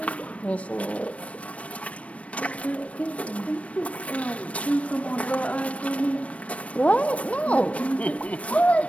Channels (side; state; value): right; late; 0.064 ms